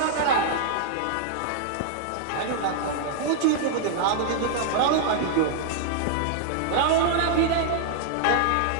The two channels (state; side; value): different; both; correlation -0.01